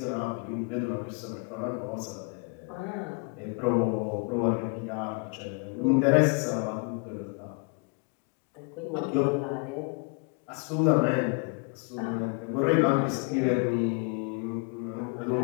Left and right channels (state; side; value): quieter; right; 35.4 dB